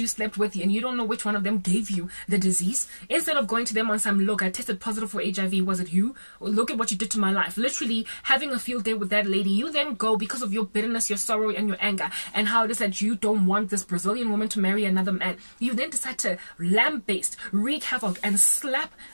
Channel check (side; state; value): both; inverted; correlation -1.00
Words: slept with and you don't know which one of them gave you the disease, instead of going to them on some, look, I tested positive for HIV, was it you? Look at what you did to my life. Literally having a field day with that lady, you then go because of your bitterness, your sorrow, and your anger, and how it is that you don't want this Brazilian woman to marry another man. You then decide to lamb-based, wreak havoc, and slap